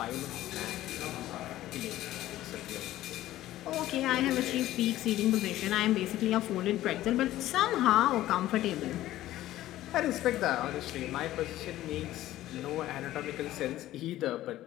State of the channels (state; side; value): quieter; right; 14.7 dB